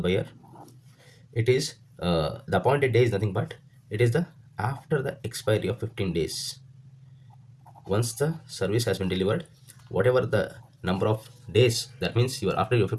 it is the appointed day is nothing but it is the after the expiry of 15 days. Once the service has been delivered, whatever the number of days, that means you are after your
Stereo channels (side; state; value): both; identical; correlation 1.00